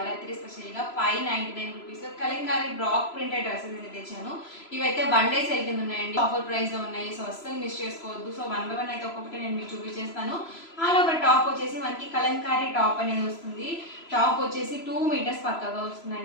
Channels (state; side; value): late; right; 3.0 ms